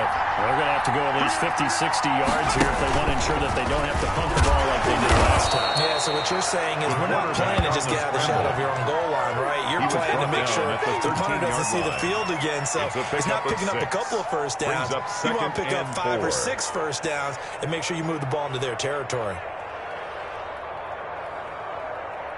They're going to have to go at least 50, 60 yards here if they want to ensure that they don't have to pump the ball like they did last time. Yeah, so what you're saying is we're not playing to just get out of the shadow of your own goal line, right? You're playing to make sure the punter doesn't see the field again. So it's not picking up a couple of first downs. You want to pick up 5 or 6 first downs and make sure you move the ball into their territory.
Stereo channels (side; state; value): both; identical; correlation 1.00